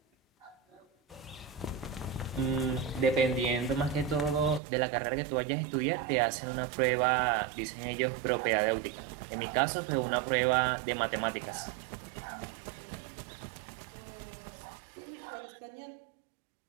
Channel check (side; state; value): left; drops out; at 4.6 s